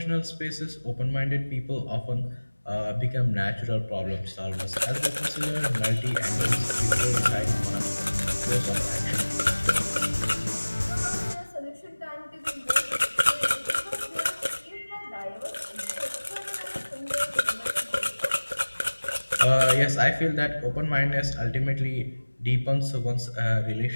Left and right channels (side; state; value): both; inverted; correlation -1.00